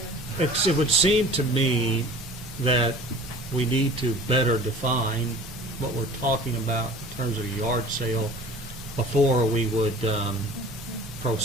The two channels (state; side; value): normal; both; correlation 0.44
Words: here? it would seem to me that we need to better define what we're talking about in terms of a yard sale before we would